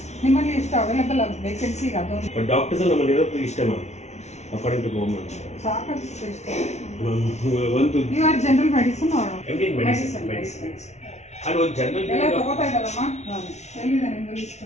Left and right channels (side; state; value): right; late; 0.32 ms